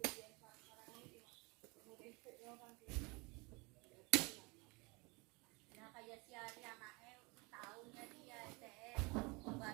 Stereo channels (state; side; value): quieter; left; 27.6 dB